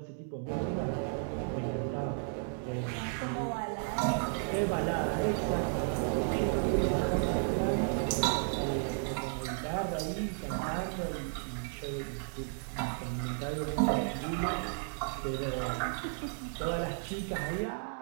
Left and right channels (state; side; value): silent; left; 55 dB below the other